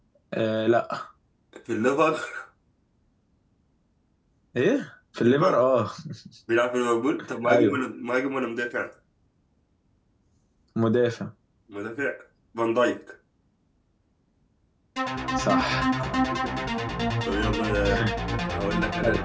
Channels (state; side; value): identical; both; correlation 1.00